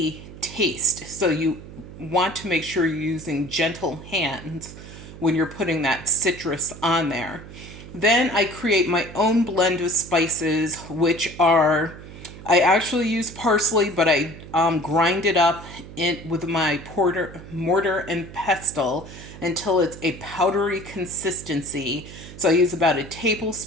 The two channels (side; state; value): right; noise; hum, 15 dB below the sound